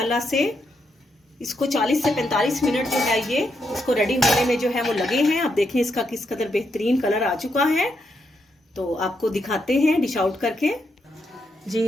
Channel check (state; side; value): normal; both; correlation 0.80